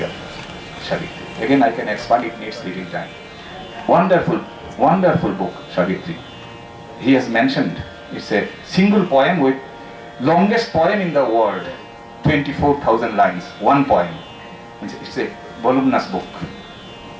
of Savitri. Again, I can expand, it needs little time. Wonderful book, Savitri. He has mentioned, it's a single poem with longest poem in the world, 24,000 lines, one poem. It's a voluminous book,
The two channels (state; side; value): identical; both; correlation 1.00